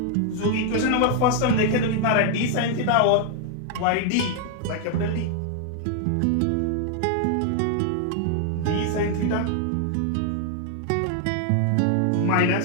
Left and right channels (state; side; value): different; both; correlation 0.00